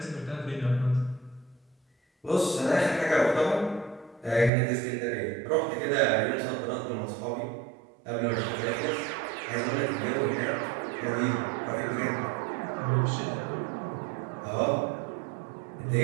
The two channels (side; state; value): left; drops out; at 4.5 s